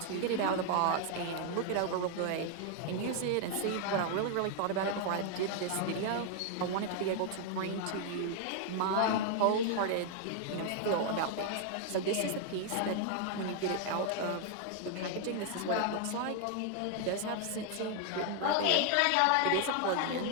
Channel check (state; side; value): different; both; correlation 0.00